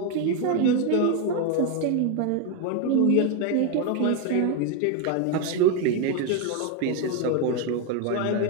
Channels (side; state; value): both; different; correlation 0.01